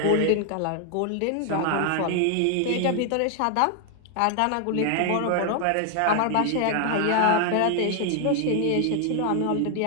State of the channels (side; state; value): both; different; correlation 0.00